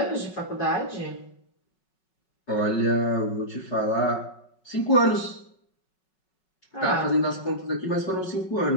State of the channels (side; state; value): right; late; 5.4 ms